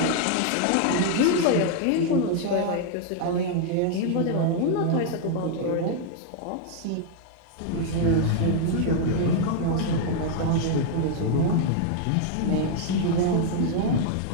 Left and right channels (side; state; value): both; different; correlation 0.00